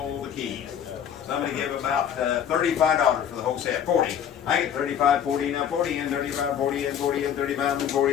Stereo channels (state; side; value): quieter; right; 8.9 dB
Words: the keys. Somebody give about $35 for the whole set. 40. I get 35, 40, now 40, and 35, 40, and 40, and 35, and